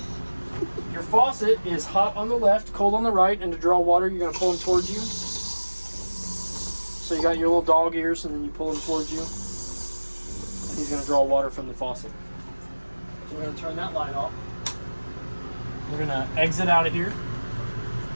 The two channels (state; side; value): inverted; both; correlation -1.00